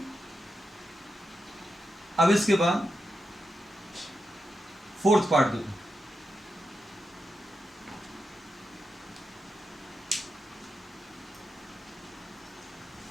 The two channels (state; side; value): normal; both; correlation 0.88